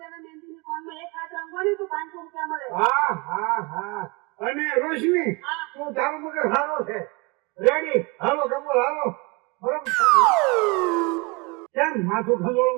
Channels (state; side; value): quieter; left; 27.7 dB